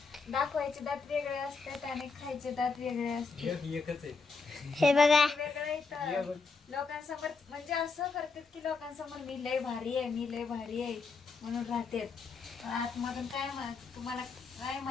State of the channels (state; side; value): quieter; right; 4.6 dB